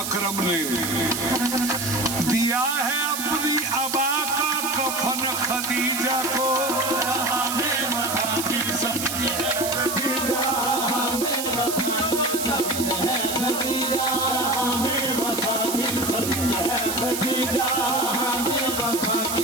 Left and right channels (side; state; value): right; noise; hiss, 4 dB below the sound